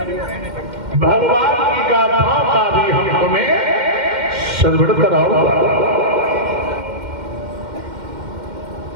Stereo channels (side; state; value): left; late; 2.1 ms